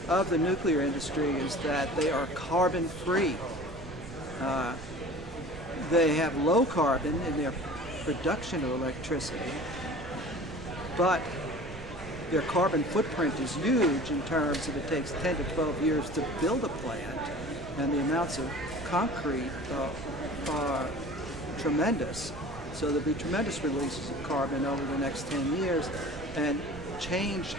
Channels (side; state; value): right; noise; rumble, 13 dB below the sound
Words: of the nuclear industry is that they are carbon free. They have low carbon in their production of electricity, but their carbon footprint is huge in terms of it takes 10 to 12 years to build a plant, and the amounts of concrete are tremendous. So there'll be tremendous releases of carbon over the next 10 years, and change